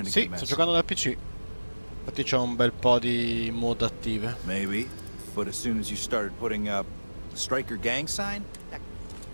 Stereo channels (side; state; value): both; inverted; correlation -1.00